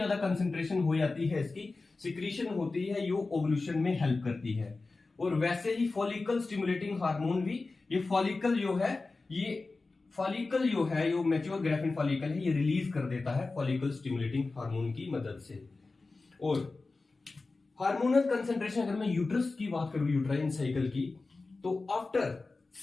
कंसेंट्रेशन हो जाती है, इसकी सिक्रीशन होती है, जो ओवल्यूशन में हेल्प करती है। और वैसे ही फॉलिकल स्टिमुलेटिंग हार्मोन भी, ये फॉलिकल जो है, ये फॉलिकल जो है, जो मैच्योर ग्रेफिन फॉलिकल है, ये रिलीज कर देता है फॉलिकल स्टिमुलेटिंग हार्मोन की मदद से। और हार्मोनल कंसंट्रेशन अगर मैं यूट्रस की बात करूं, यूट्राइन साइकिल की, तो आफ्टर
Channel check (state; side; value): quieter; right; 3.6 dB